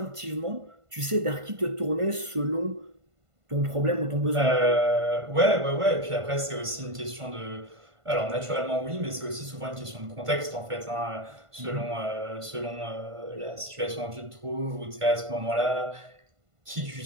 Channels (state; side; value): late; left; 1.5 ms